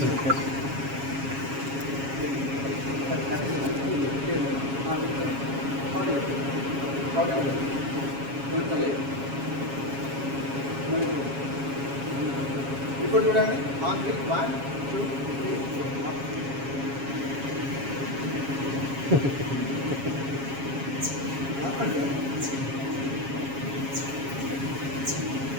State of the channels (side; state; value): left; late; 7.3 ms